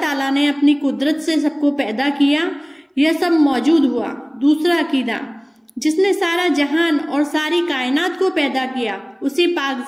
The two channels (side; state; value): both; identical; correlation 1.00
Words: ताला ने अपनी कुदरत से सबको पैदा किया, यह सब मौजूद हुआ। दूसरा अकीदा, जिसने सारा जहान और सारी कायनात को पैदा किया उसी पाक